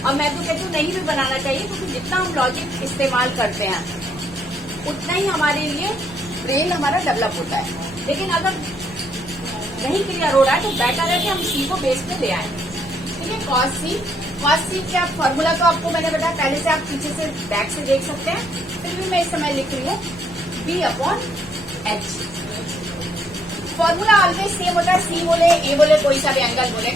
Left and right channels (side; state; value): both; normal; correlation 0.71